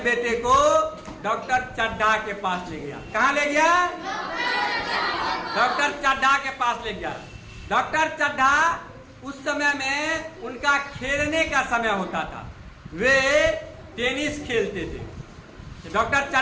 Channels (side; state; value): both; identical; correlation 1.00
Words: को डॉक्टर चड्ढा के पास ले गया। कहाँ ले गया? डॉक्टर चड्ढा के पास ले गया। डॉक्टर चड्ढा उस समय में उनका खेलने का समय होता था, वे टेनिस खेलते थे। डॉक्टर